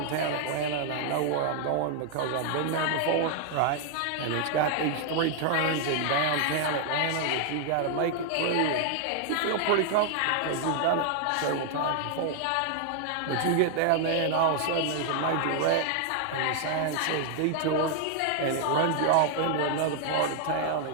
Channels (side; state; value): both; different; correlation 0.00